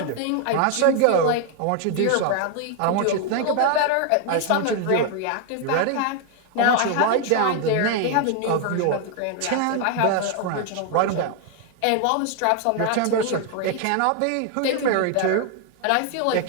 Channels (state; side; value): different; both; correlation 0.00